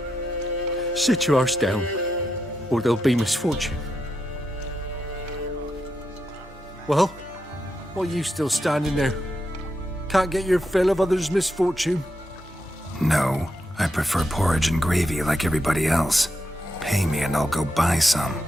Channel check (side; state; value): both; normal; correlation 0.84